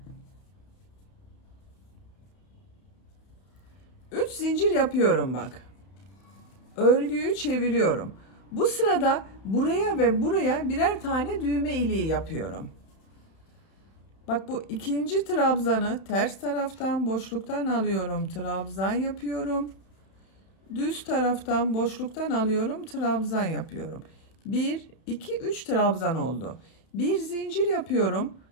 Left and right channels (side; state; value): right; late; 31 ms